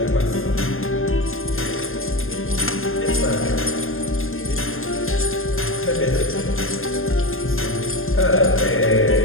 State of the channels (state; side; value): late; right; 0.60 ms